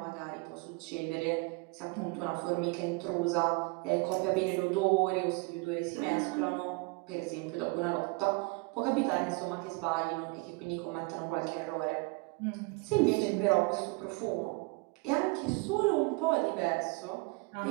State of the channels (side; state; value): left; quieter; 27.1 dB